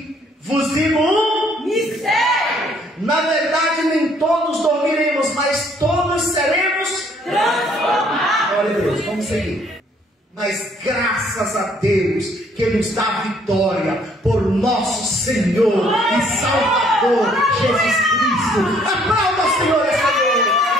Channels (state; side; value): normal; both; correlation 0.63